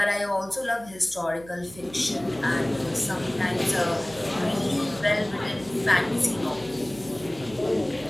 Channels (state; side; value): noise; right; hum, 19 dB below the sound